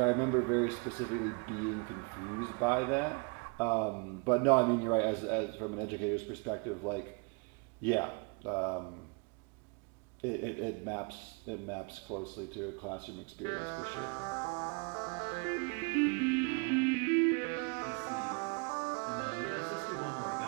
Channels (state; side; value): quieter; left; 33.2 dB